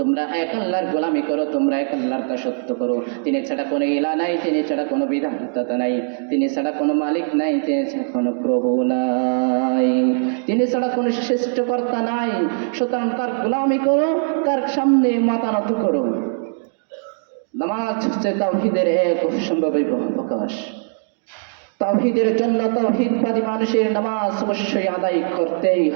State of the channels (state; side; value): silent; left; digital silence